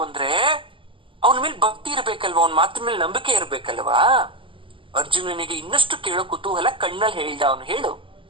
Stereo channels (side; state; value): left; late; 0.25 ms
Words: ಅಂದ್ರೆ ಅವನ ಮೇಲೆ ಭಕ್ತಿ ಇರ್ಬೇಕಲ್ವಾ, ಅವನ ಮಾತಿನ ಮೇಲೆ ನಂಬಿಕೆ ಇರ್ಬೇಕಲ್ವಾ. ಅರ್ಜುನನಿಗೆ ಇನ್ನಷ್ಟು ಕೇಳೋ ಕುತೂಹಲ ಕಣ್ಣಲ್ಲಿ ಹೇಳ್ದ ಅವನು. ಹೇಳು.